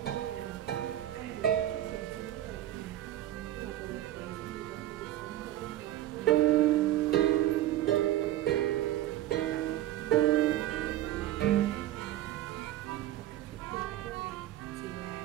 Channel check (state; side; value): quieter; left; 13.4 dB